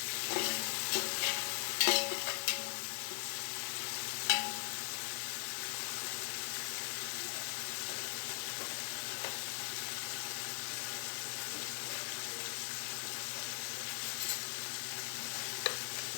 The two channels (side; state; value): right; silent; digital silence